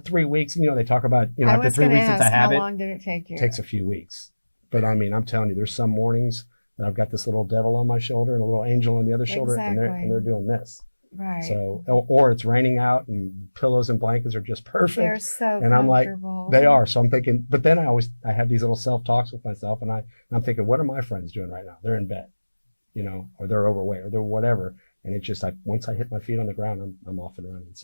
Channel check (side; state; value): both; inverted; correlation -1.00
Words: 3 weeks, they talk about, after 3 weeks it's a habit. How long did it take you? It takes a few weeks. But I mean, I'm telling you, there's some mornings that I've got this little devil on my shoulder and a little angel on the other shoulder, and they're doing this. Right. So, or it's raining out and pillows and blankets are just perfect. They're so and I'm like, comfortable. they are. So I'm thinking, but then I have these little self-talks with myself, and I'm thinking, what are my friends doing right now? They're in bed, or they're overweight, or they're whatever. And it's just like, once I hit my feet on the ground, I'm off and running.